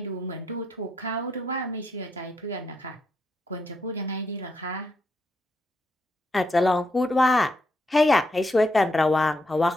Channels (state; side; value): normal; both; correlation 0.79